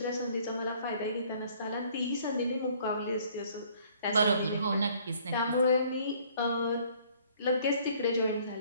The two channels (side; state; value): both; inverted; correlation -0.59